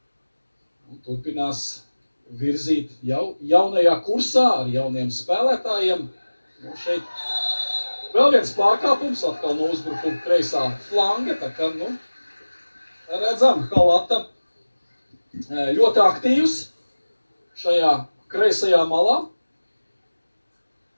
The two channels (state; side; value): inverted; both; correlation -1.00